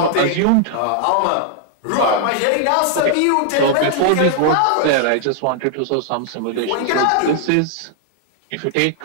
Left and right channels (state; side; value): different; both; correlation 0.00